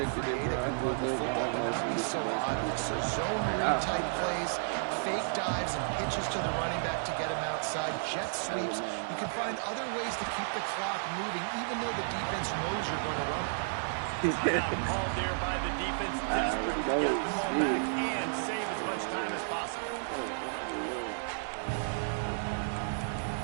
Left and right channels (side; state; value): left; silent; 56 dB below the other